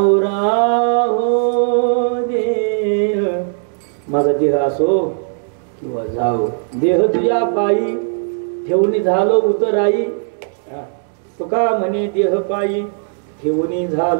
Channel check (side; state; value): left; silent; digital silence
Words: राहो देह. माझा देह असो किंवा जाओ देह तुझ्या पायी ठेवणी झालो उतराई. तुका म्हणे देह पायी ठेवणी